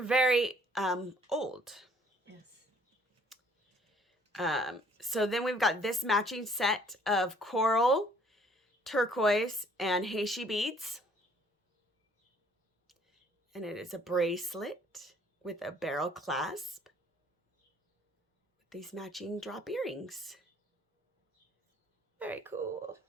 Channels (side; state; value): both; normal; correlation 0.60